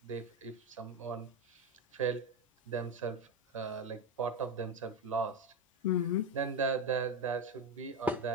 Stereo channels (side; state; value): both; normal; correlation 0.13